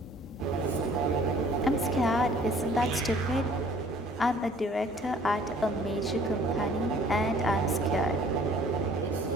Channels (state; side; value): normal; both; correlation 0.54